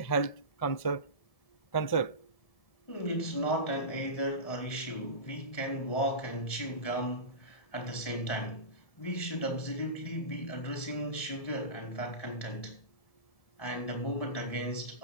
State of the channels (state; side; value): late; right; 1.7 ms